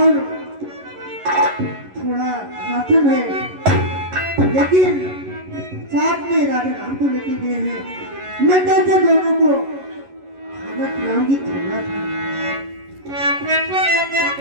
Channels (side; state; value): left; late; 11 ms